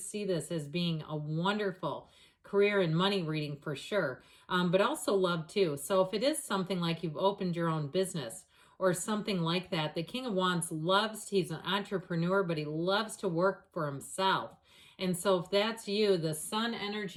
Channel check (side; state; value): both; identical; correlation 1.00